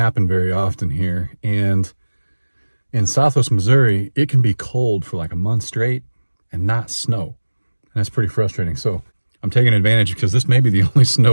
very often here. And in Southwest Missouri, it can be cold for like a month straight and not snow. And that's pretty frustrating. So I'm taking advantage because this may be the only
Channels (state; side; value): inverted; both; correlation -1.00